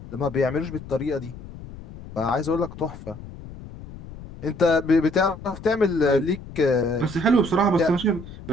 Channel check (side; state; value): left; noise; rumble, 15 dB below the sound